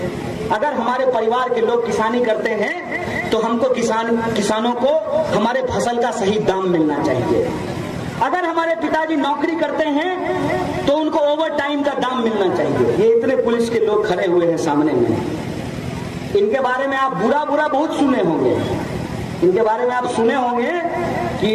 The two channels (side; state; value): both; identical; correlation 1.00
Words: अगर हमारे परिवार के लोग किसानी करते हैं तो हमको किसानों को हमारे फसल का सही दाम मिलना चाहिए। अगर हमारे पिताजी नौकरी करते हैं तो उनको ओवर टाइम का दाम मिलना चाहिए। ये इतने पुलिस के लोग खड़े हुए हैं सामने में, इनके बारे में आप बुरा बहुत सुने होंगे। इनके बारे में आप सुने होंगे कि